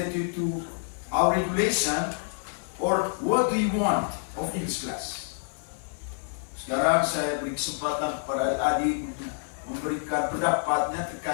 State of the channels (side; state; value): right; silent; 55 dB below the other